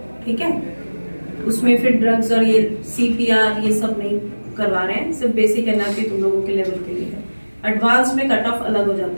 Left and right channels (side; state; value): both; inverted; correlation -1.00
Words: ठीक है? उसमें फिर ड्रग्स और ये CPR ये सब नहीं करवा रहे हैं, सिर्फ बेसिक एनर्जी तुम लोगों के लेवल के लिए है। एडवांस में कट ऑफ अलग हो